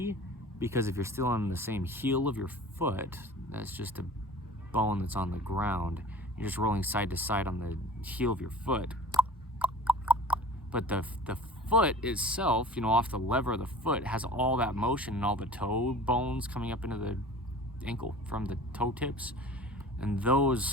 because if you're still on the same heel of your foot, that's just a bone that's on the ground. You're just rolling side to side on the heel of your foot. But the foot itself, you know, off the lever of the foot, has all that motion and all the toe bones coming up into the ankle from the toe tips. And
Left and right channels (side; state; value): both; normal; correlation 0.41